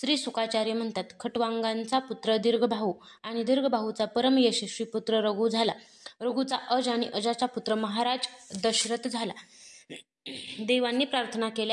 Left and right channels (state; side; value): identical; both; correlation 1.00